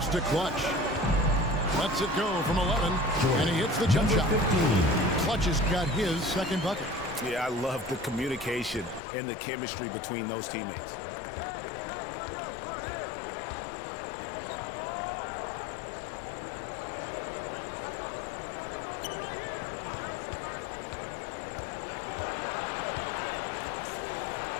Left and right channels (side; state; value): right; drops out; at 9.0 s